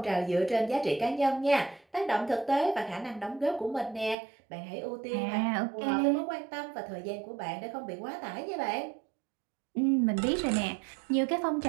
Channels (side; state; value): left; drops out; at 4.2 s